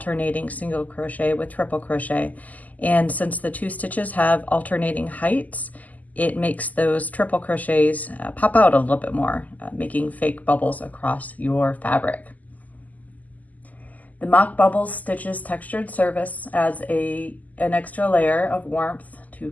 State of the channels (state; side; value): late; right; 0.079 ms